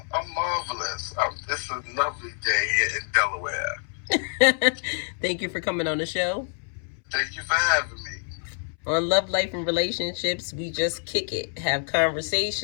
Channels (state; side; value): silent; right; 61 dB below the other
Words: marvelous. It's a lovely day here in Delaware. Thank you for coming on the show. Thank you for having me. On Love, Life, and Relationships, we just kick it, have